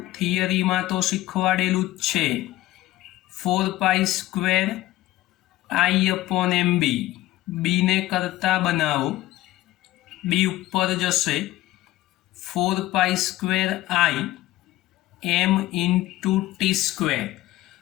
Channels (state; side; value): quieter; right; 16.3 dB